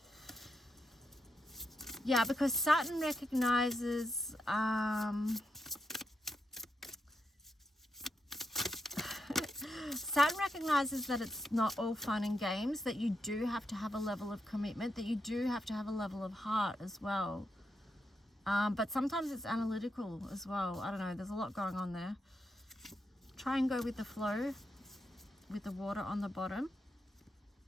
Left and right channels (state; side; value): normal; both; correlation 0.84